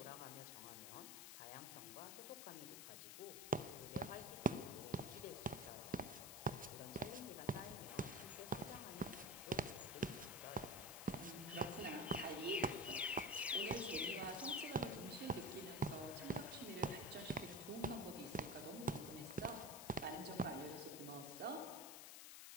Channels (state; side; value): noise; left; hiss, 9 dB below the sound